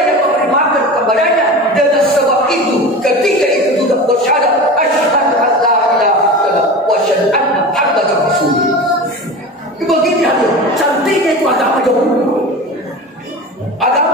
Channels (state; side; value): normal; both; correlation 0.31